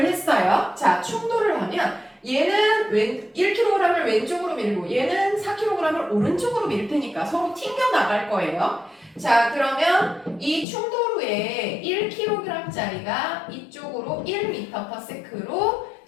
했어요. 자 충돌을 하면 얘는 1kg을 왼쪽으로 밀고 얘는 4kg을 오른쪽으로 밀 테니까 서로 튕겨 나갈 거예요. 자 그러면 이 충돌 후에 1kg짜리가 이쪽으로 1m/s로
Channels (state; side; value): drops out; right; at 10.7 s